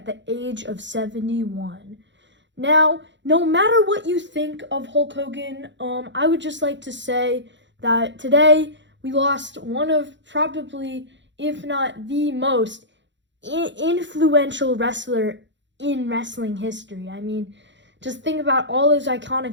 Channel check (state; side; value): late; left; 0.53 ms